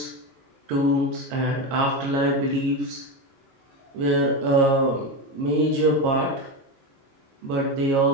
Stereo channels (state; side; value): late; left; 22 ms